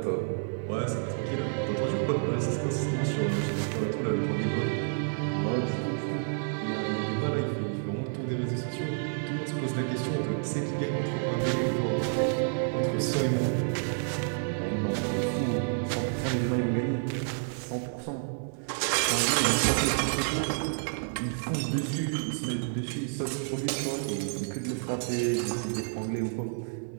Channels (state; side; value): silent; left; 58 dB below the other